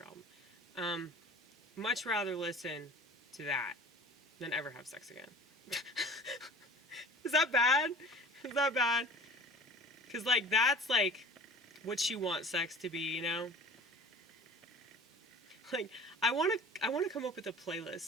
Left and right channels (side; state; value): both; normal; correlation 0.43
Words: album. Much rather listen to that than ever have sex again. Is that bad? Is that bad? Because, like, that's, like, what you want sex to be, you know? Like, I want to come up with a